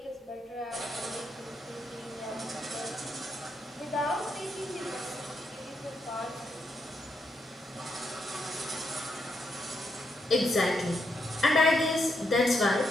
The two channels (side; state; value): both; normal; correlation 0.80